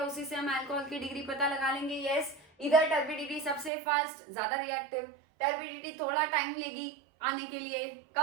उसी से हम अल्कोहल की डिग्री पता लगा लेंगे? यस, इधर टर्बिडिटी सबसे फास्ट, ज्यादा रिएक्टिव, टर्बिडिटी थोड़ा टाइम लेगी आने के लिए,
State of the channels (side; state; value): left; drops out; at 3.7 s